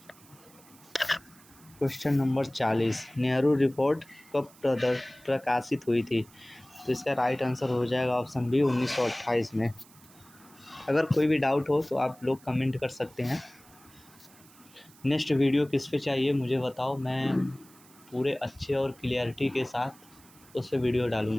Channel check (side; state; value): right; noise; hiss, 25 dB below the sound